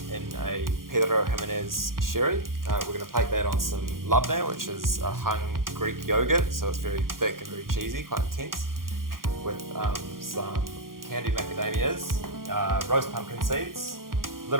in a Pedro Jimenez sherry. We're going to plate that on some labneh, which is a hung Greek yogurt, so it's very thick and very cheesy, quite intense, with some candied macadamias, roast pumpkin seeds, a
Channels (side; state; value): left; late; 0.91 ms